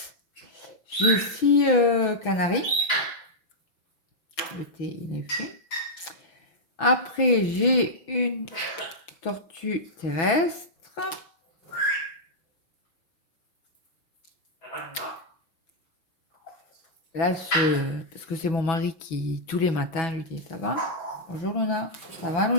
J'ai 6 canaris. L'été, il est fait. Après, j'ai une tortue terrestre. Là, parce que c'est mon mari qui, tous les matins, lui dit, ça va? Bonjour Luna, ça va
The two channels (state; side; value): late; right; 6.0 ms